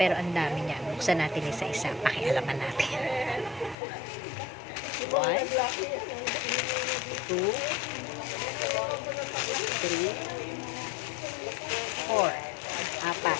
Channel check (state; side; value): drops out; right; at 3.8 s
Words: ang dami niya. Buksan natin isa-isa. Pakialaman natin. 1, 2, 3, 4. Apat.